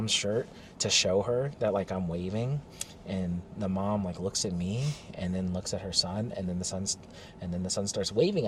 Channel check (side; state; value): both; identical; correlation 1.00